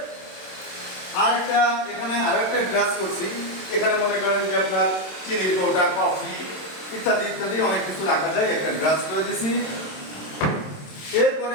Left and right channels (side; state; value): right; late; 27 ms